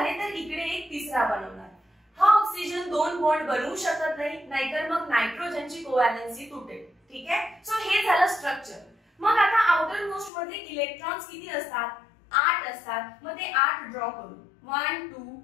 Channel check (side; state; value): right; drops out; at 10.3 s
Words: तर इकडे एक तिसरा बनवणार. हा ऑक्सिजन 2 बॉन्ड बनवू शकत नाही, नाहीतर मग नायट्रोजनची कोव्हॅलेन्सी तुटेल. ठीक आहे. सो हे झालं स्ट्रक्चर. मग आता आउटर मोस्ट मध्ये इलेक्ट्रॉन्स किती असतात? 8 असतात. मग ते 8 ड्रॉ करू. 1 2